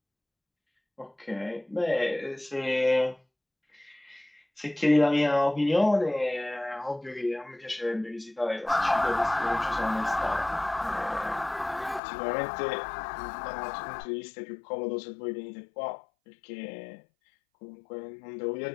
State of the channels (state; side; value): drops out; right; at 12.0 s